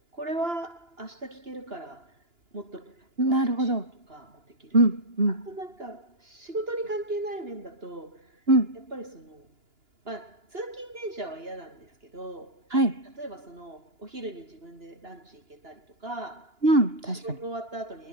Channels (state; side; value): late; left; 2.9 ms